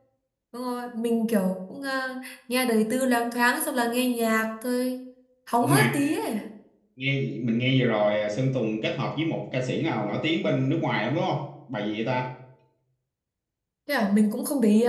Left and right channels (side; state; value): both; identical; correlation 1.00